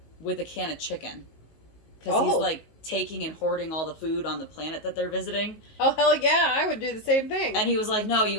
with a can of chicken. Because he's like taking and hoarding all the food on the planet that they're visiting. Oh, hell yeah, I would do the same thing. And he was like, no, you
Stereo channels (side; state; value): right; late; 19 ms